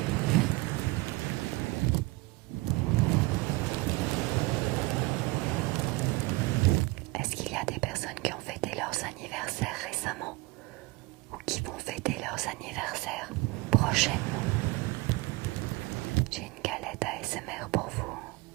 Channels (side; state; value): left; quieter; 22.8 dB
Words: Est-ce qu'il y a des personnes qui ont fêté leurs anniversaires récemment ou qui vont fêter leurs anniversaires prochainement? J'ai une galette ASMR pour vous.